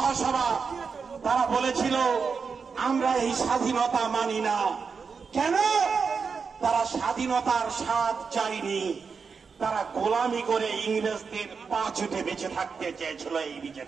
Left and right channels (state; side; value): quieter; left; 5.5 dB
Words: তারা বলেছিল আমরা এই স্বাধীনতা মানি না। কেন? তারা স্বাধীনতার স্বাদ চায়নি, তারা গোলামি করে ইংরেজদের পা ছুটে বেঁচে থাকতে চেয়েছিল এই